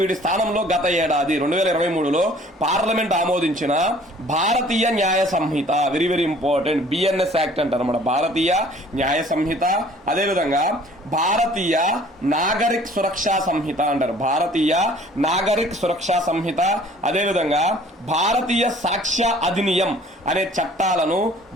వీటి స్థానంలో గత ఏడాది 2023లో పార్లమెంట్ ఆమోదించిన Bharatiya Nyaya Sanhita, very very important, BNS act అంటారు అన్నమాట. భారతీయ న్యాయ సంహిత, అదేవిధంగా భారతీయ నాగరిక్ సురక్షా సంహిత అంటారు. భారతీయ నాగరిక్ సురక్షా సంహిత, అదేవిధంగా భారతీయ సాక్ష్య అధినియం అనే చట్టాలను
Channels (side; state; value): both; normal; correlation 0.53